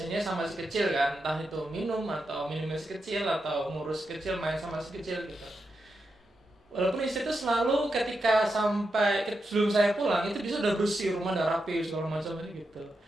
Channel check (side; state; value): both; normal; correlation 0.86